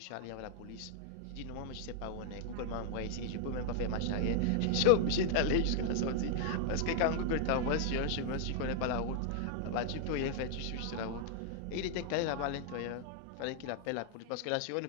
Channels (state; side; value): different; both; correlation 0.00